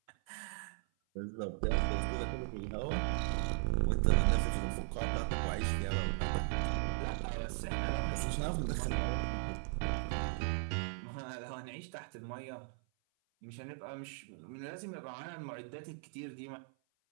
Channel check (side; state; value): left; silent; 53 dB below the other